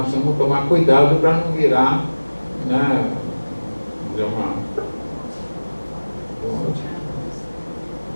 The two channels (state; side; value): inverted; both; correlation -1.00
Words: precisamos tomar cuidado para não virar,